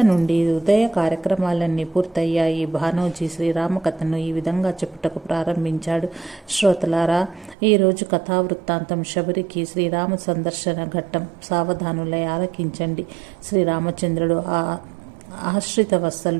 నుండి ఉదయ కార్యక్రమాలన్నీ పూర్తయ్యాయి। భానోజీ శ్రీరామ కథను ఈ విధంగా చెప్పుటకు ప్రారంభించాడు। శ్రోతలారా, ఈరోజు కథావృత్తాంతం శబరికి శ్రీరామ సందర్శన ఘట్టం। సావధానులై ఆలకించండి। శ్రీరామచంద్రుడు ఆశ్రిత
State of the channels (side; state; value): left; drops out; at 7.6 s